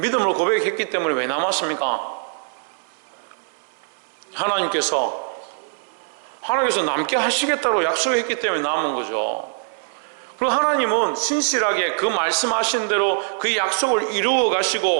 고백했기 때문에 왜 남았습니까? 하나님께서 남게 하시겠다고 약속했기 때문에 남은 거죠. 그리고 하나님은 신실하게 그 말씀하신 대로 그 약속을 이루어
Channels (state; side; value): silent; left; 63 dB below the other